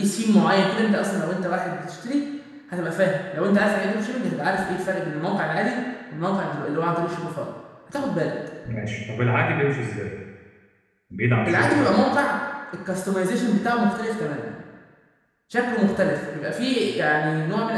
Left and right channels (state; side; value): identical; both; correlation 1.00